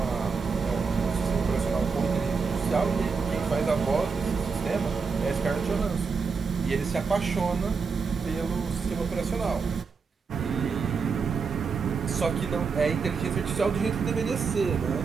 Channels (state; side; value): quieter; left; 5.2 dB